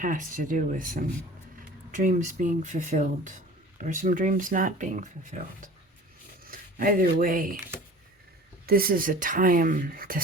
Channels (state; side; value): normal; both; correlation 0.42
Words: to do with some dreams being fulfilled or some dreams not being fulfilled. Either way, this is a time to